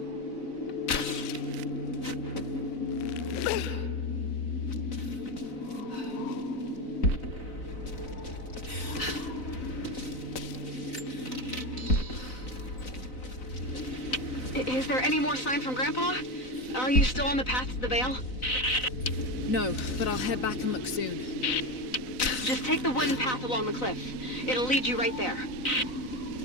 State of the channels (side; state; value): right; late; 4.0 ms